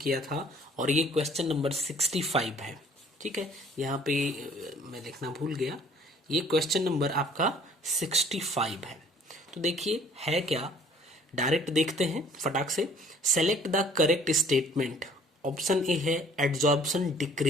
था और ये क्वेश्चन नंबर 65 है। ठीक है, यहाँ पे मैं लिखना भूल गया, ये क्वेश्चन नंबर आपका 65 है। तो देखिए है क्या, डायरेक्ट देखते हैं फटाक से। Select the correct statement. Option A है adsorption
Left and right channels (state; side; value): normal; both; correlation 0.55